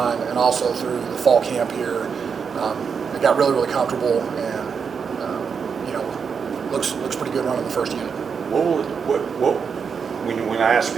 and also through the fall camp here, it got really, really comfortable, and looks pretty good running the first unit. When I ask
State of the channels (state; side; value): quieter; left; 6.2 dB